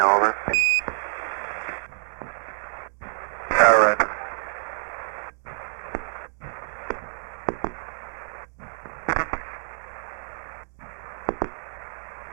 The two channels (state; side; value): silent; left; digital silence